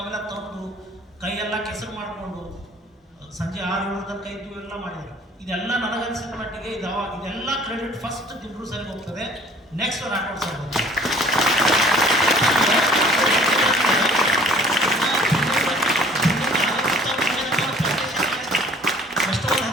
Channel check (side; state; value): both; normal; correlation 0.52